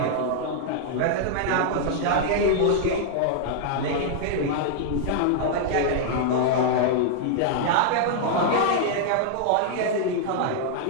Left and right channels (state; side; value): different; both; correlation -0.01